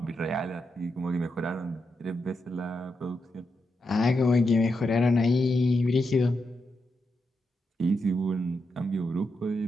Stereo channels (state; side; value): normal; both; correlation 0.85